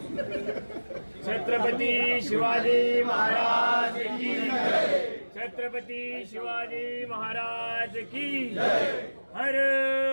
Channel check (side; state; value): both; inverted; correlation -1.00